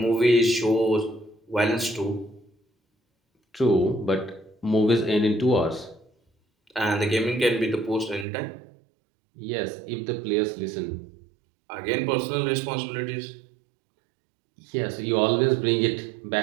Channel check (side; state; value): left; drops out; at 8.2 s